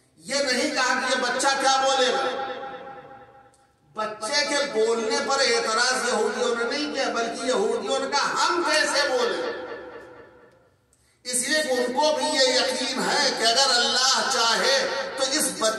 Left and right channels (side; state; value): both; identical; correlation 1.00